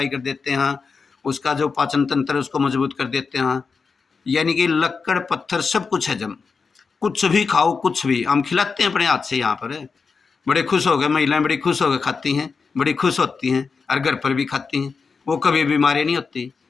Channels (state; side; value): quieter; right; 5.0 dB